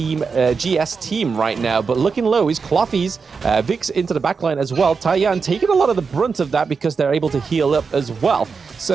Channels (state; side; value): quieter; left; 5.2 dB